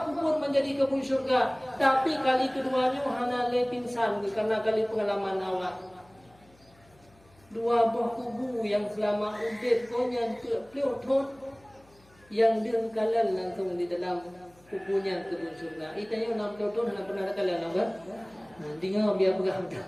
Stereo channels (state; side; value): noise; left; hum, 30 dB below the sound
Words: kubur menjadi kebun syurga. Tapi kali keduanya hana le pingsan karena kali pengalaman awak. Dua buah kubu yang selama ubed konyan ke pleutot yang dia kalian langsung di dalam kubunya kebun syurga. Itanya nak pleutot hana pernah kalian nampak? Tinggal biar pegang dah.